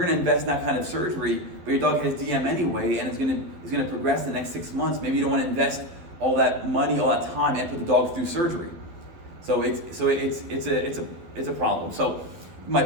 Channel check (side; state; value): left; late; 12 ms